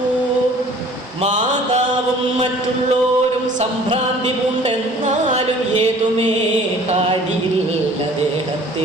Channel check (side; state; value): both; normal; correlation 0.50